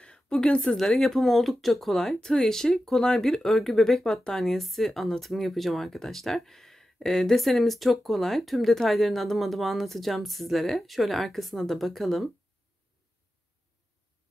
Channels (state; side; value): normal; both; correlation 0.92